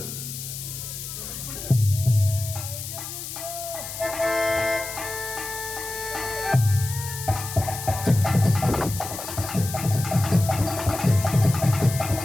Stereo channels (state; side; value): noise; left; hiss, 8 dB below the sound